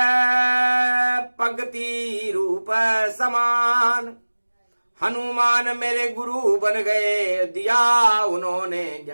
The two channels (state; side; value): inverted; both; correlation -1.00